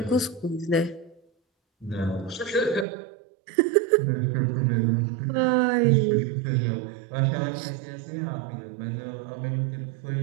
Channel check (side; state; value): left; drops out; at 2.9 s